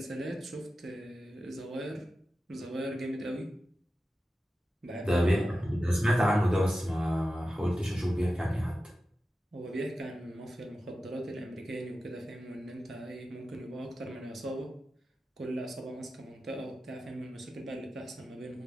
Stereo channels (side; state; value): both; normal; correlation 0.93